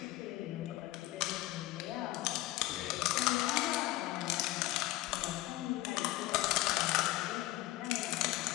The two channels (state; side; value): quieter; right; 17.2 dB